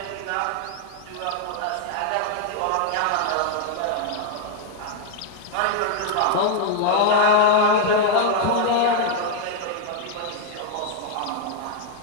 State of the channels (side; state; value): both; different; correlation 0.00